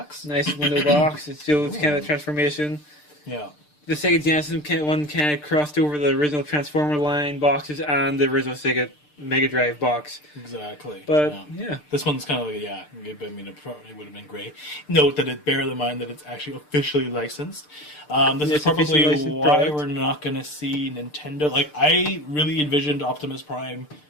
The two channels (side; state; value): right; late; 6.7 ms